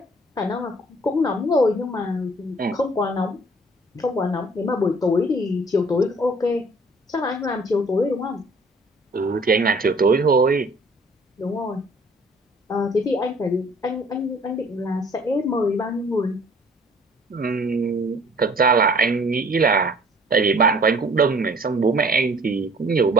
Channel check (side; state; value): both; normal; correlation 0.54